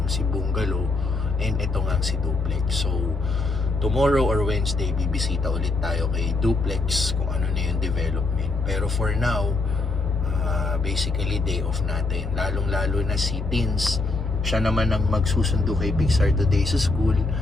si Bungalow and ito nga si Duplex. So, tomorrow or Wednesday, bibisita ulit tayo kay Duplex kung ano na yung development. Pero for now, basically day off natin. Lalong-lalo na si Tins, siya naman ang magsusundo kay Pixar today sa school.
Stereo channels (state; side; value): quieter; right; 3.4 dB